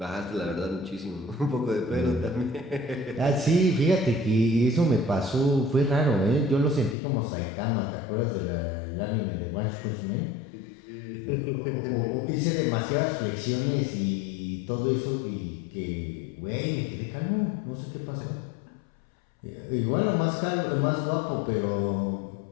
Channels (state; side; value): drops out; right; at 7.0 s